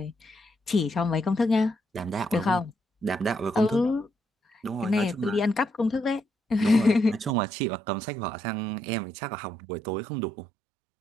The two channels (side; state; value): left; drops out; at 7.4 s